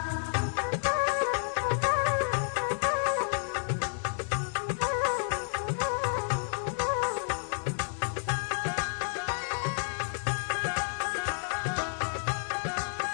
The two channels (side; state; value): right; silent; 57 dB below the other